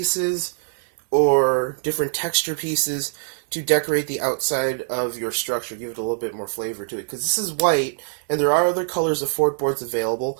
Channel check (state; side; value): silent; left; digital silence